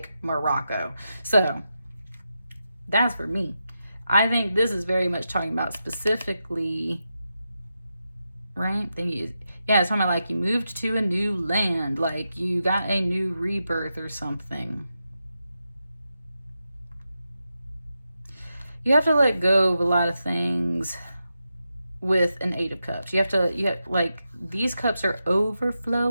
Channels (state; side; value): inverted; both; correlation -0.88